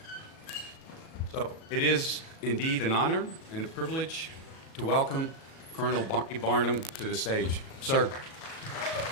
So it is indeed an honor and a privilege to welcome Colonel Barney Barnum to the stage. Sir.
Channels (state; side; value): late; right; 37 ms